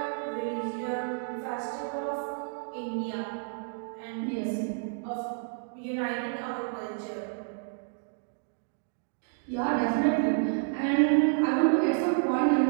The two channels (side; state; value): left; silent; digital silence